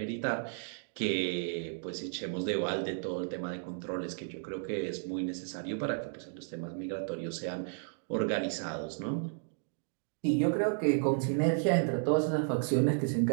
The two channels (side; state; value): left; silent; digital silence